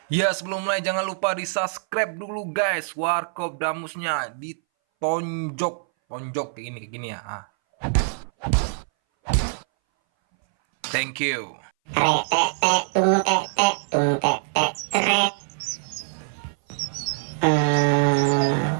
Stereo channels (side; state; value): left; silent; 60 dB below the other